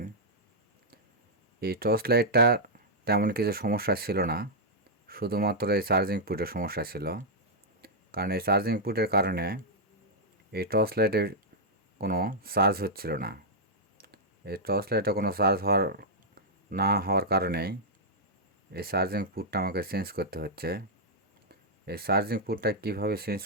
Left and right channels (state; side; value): normal; both; correlation -0.06